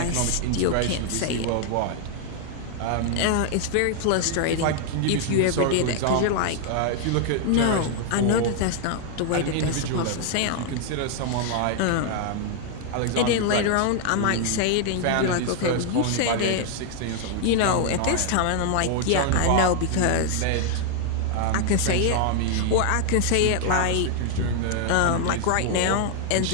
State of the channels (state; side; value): different; both; correlation 0.00